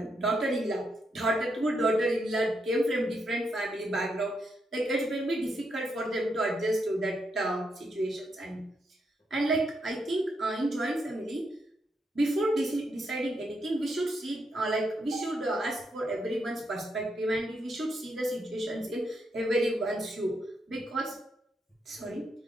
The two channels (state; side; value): normal; both; correlation 0.80